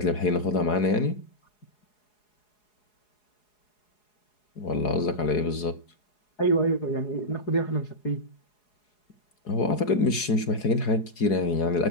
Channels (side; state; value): right; late; 4.8 ms